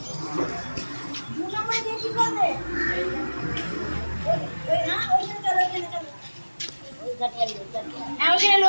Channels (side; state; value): both; inverted; correlation -1.00